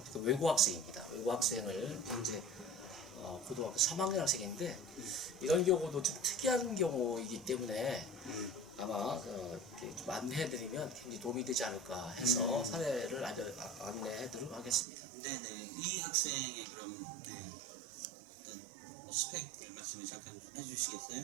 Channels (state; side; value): drops out; left; at 14.9 s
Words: 외고 학생입니다. 외고 학생을 현재 고등학교 3학년 학생인데 이런 경우도 좀 특이한 경우이기 때문에 아마 이렇게 좀 안내해드리면 굉장히 도움이 되지 않을까 해서 사례를 안내해드리도록 하겠습니다. 네네. 이 학생의 그럼 어떤 뭐 스펙을 말씀을 잠깐